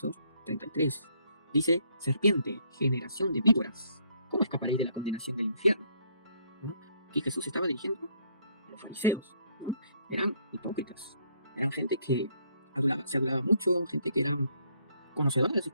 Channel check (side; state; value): both; inverted; correlation -0.68